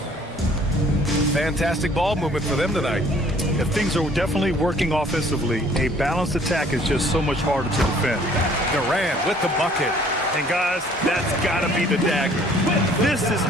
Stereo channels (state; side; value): normal; both; correlation 0.57